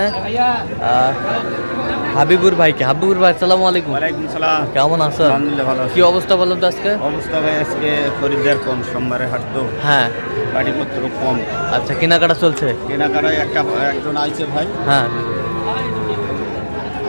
হাবিবুর ভাইকে। হাবিবুর ভাই আসসালামু আলাইকুম। ওয়ালাইকুম সালাম। কেমন আছেন? আলহামদুলিল্লাহ ভালো। কি অবস্থা বলেন তো আজকে? অবস্থা ভাই আজকে খরিদ্দার কম, সোমবারে হাট তো। হ্যাঁ, গাড়িপত্র কম। আচ্ছা, কেনাকাটা চলছে? কেনাকাটায় একজন আইছে ভাই, হ্যাঁ,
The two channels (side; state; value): both; inverted; correlation -1.00